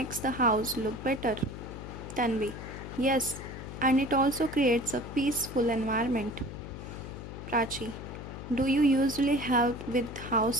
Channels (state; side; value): noise; left; hum, 10 dB below the sound